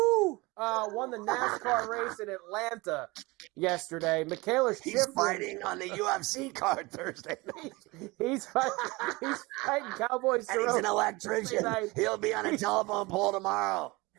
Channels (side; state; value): left; quieter; 23.6 dB